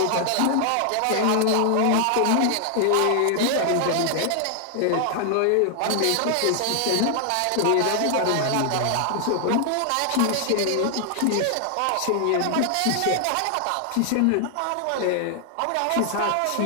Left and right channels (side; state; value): both; different; correlation 0.00